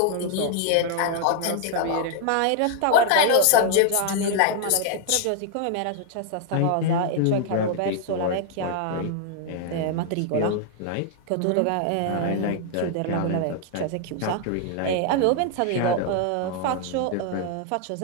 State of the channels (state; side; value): different; both; correlation 0.00